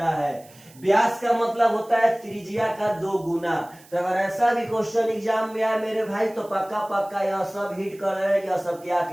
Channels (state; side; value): noise; right; hiss, 25 dB below the sound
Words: है। व्यास का मतलब होता है त्रिज्या का 2 गुना। तो अगर ऐसा भी क्वेश्चन एग्जाम में आए मेरे भाई तो पक्का पक्का यह सब हिट कर रहे हैं कि यह सब क्या